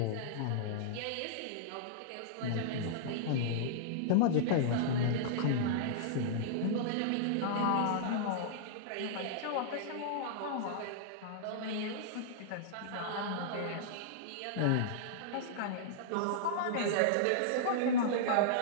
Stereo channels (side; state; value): both; different; correlation -0.02